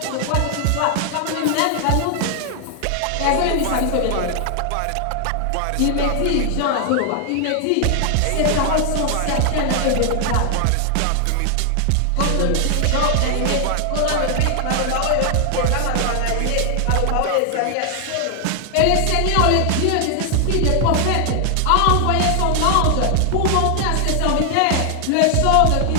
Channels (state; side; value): different; both; correlation 0.00